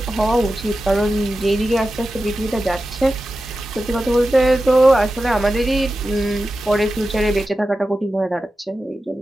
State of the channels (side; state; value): both; normal; correlation 0.92